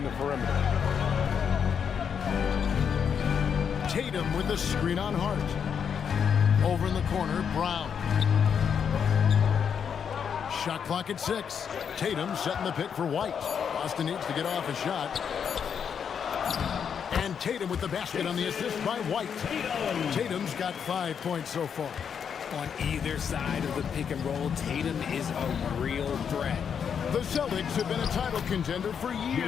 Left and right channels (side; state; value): right; quieter; 7.3 dB